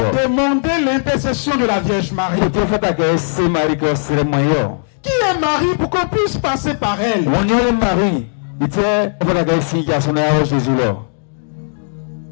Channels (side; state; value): right; silent; digital silence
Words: demander l'intercession de la Vierge Marie? Qui est Marie pour qu'on puisse passer par elle?